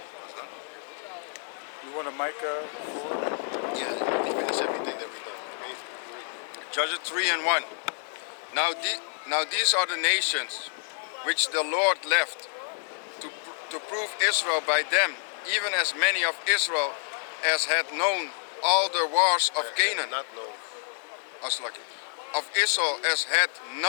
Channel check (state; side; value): silent; right; 59 dB below the other